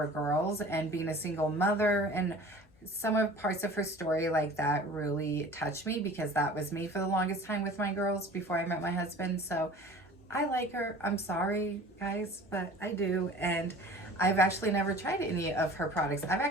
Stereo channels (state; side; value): normal; both; correlation 0.43